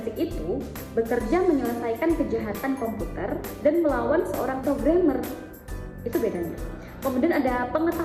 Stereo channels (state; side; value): identical; both; correlation 1.00